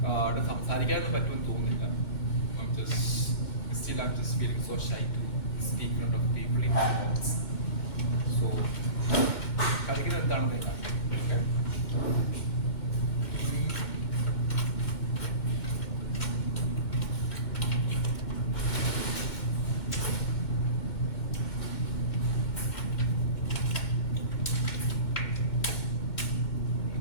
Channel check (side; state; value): right; late; 2.1 ms